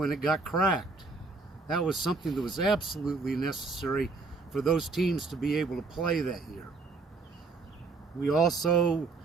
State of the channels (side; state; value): left; quieter; 4.0 dB